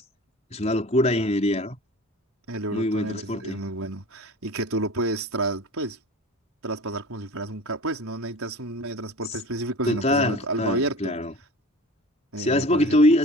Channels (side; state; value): both; normal; correlation 0.39